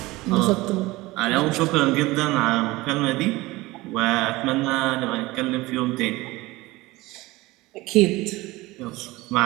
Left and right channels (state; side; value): quieter; left; 20.2 dB